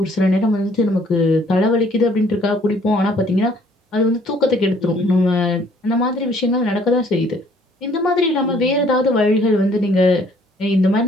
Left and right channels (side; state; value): both; normal; correlation 0.61